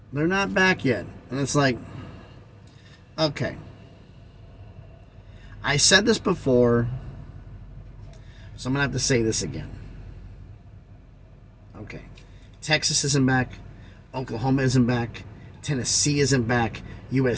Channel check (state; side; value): identical; both; correlation 1.00